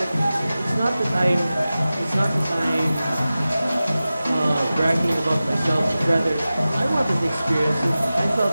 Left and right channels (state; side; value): inverted; both; correlation -0.95